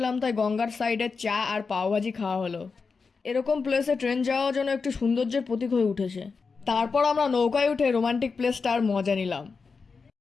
তাই গঙ্গার সাইডে চা আর পাওভাজি খাওয়া হলো। এরকম প্লেসে ট্রেন যাওয়া যেন একটু সৌন্দর্যের প্রতীক হয়ে উঠেছে। তারপর আমরা নৌকায় উঠে রোমান্টিক প্লেসটার মজা নিলাম।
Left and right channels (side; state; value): right; quieter; 4.9 dB